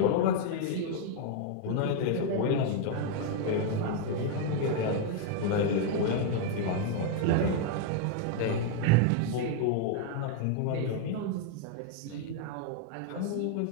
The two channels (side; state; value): both; different; correlation 0.00